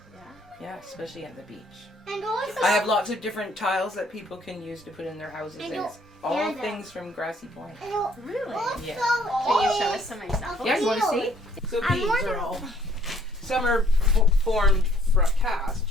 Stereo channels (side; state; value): both; normal; correlation 0.61